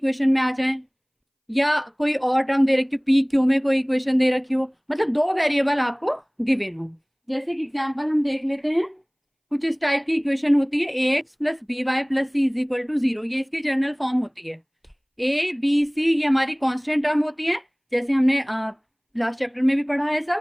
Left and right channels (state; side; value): identical; both; correlation 1.00